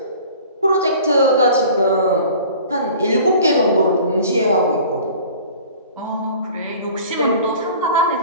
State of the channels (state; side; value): inverted; both; correlation -0.45